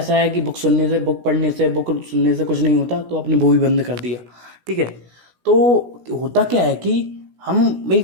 है कि बुक सुनने से, बुक पढ़ने से, बुक सुनने से कुछ नहीं होता, तो आपने वो भी बंद कर दिया। ठीक है, तो होता क्या है कि हम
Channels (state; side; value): late; left; 16 ms